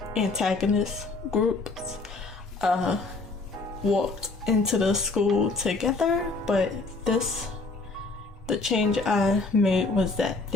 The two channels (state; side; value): quieter; right; 3.6 dB